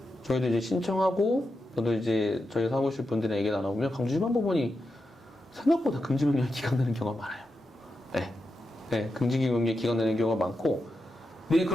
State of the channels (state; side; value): normal; both; correlation 0.88